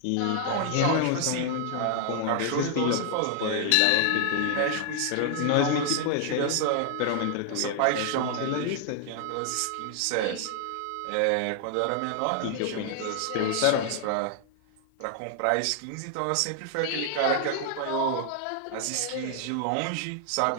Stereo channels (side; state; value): both; different; correlation 0.00